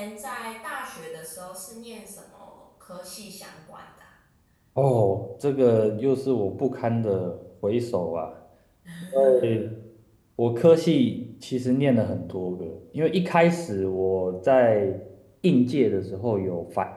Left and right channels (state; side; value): identical; both; correlation 1.00